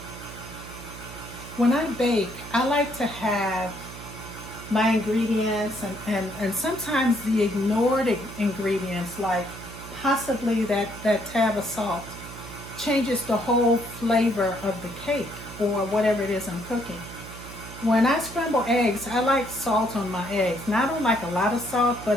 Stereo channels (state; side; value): noise; right; hum, 13 dB below the sound